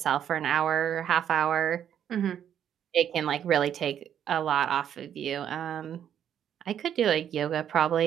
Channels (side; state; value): left; quieter; 9.5 dB